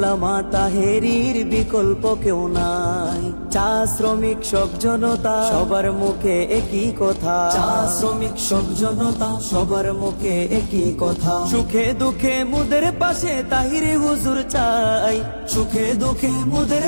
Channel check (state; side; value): inverted; both; correlation -1.00